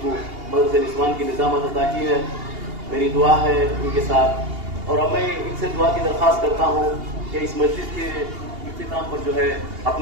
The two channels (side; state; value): left; late; 2.8 ms